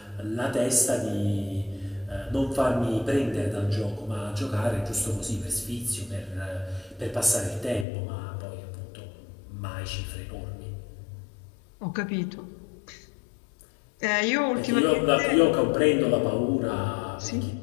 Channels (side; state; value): right; drops out; at 7.9 s